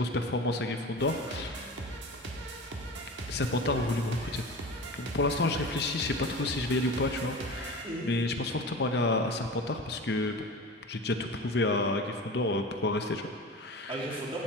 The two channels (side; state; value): both; normal; correlation 0.32